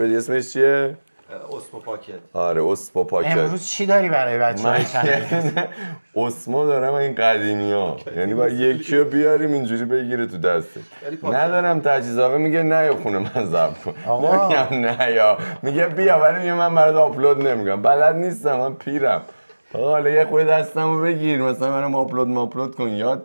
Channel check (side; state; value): both; inverted; correlation -1.00